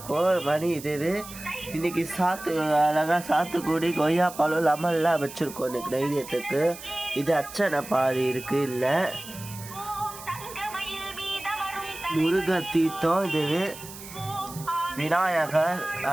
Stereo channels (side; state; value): right; noise; hiss, 14 dB below the sound